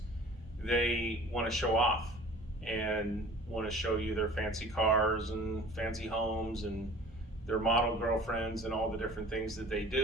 they want to show off and want to show you their fancy cars and fancy homes and their model girlfriends and all the different things that they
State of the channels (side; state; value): both; normal; correlation 0.45